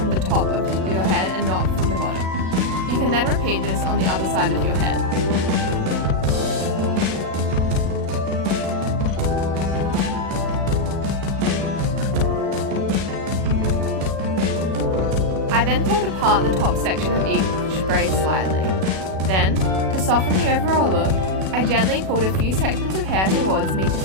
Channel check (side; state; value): left; late; 37 ms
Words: the top of your head and not from the bottom. You can then repeat this on the other side of your head. I then pulled apart the top section of each braid slightly. Then, to soften the overall look, I gently pulled a few sections of hair towards me to